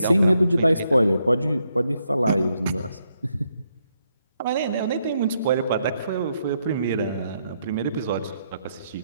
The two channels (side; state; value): both; inverted; correlation -0.78